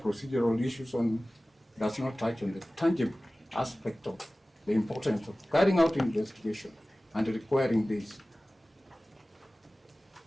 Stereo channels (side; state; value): both; normal; correlation 0.97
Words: issues on does not touch on the tangible aspect of the importance of carrying out investigation and requiring this.